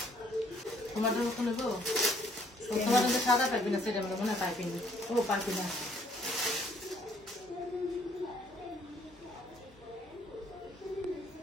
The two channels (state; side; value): normal; both; correlation 0.64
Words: তোমার জন্য খুলে গো, তোমার জন্য সাদা পাইবি না, সেটা মনে হয় পাইবি না। ও পাইবি না,